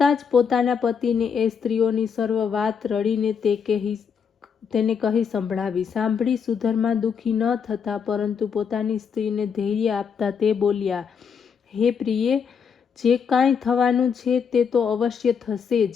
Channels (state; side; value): quieter; right; 6.7 dB